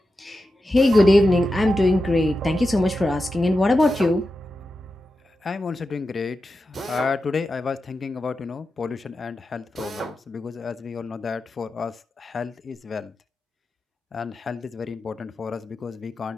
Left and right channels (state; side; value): normal; both; correlation 0.91